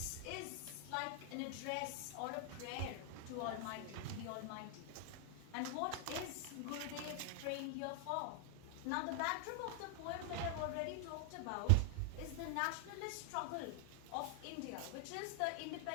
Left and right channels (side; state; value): both; different; correlation 0.00